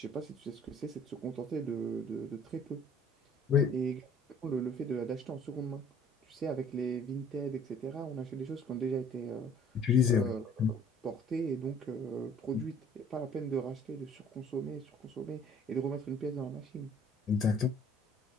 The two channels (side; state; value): both; normal; correlation 0.54